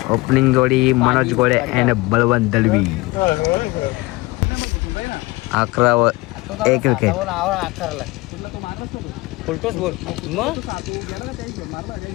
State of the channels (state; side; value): quieter; right; 21.9 dB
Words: ओपनिंग जोडी मनोज गोळे अँड बळवंत दलवी. 11 एक विकेट.